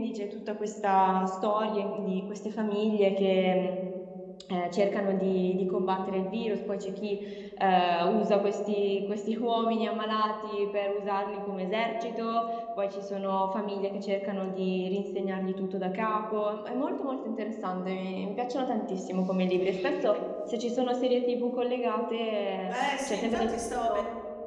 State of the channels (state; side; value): identical; both; correlation 1.00